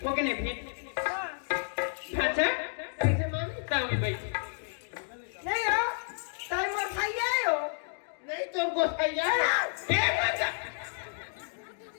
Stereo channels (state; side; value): silent; right; digital silence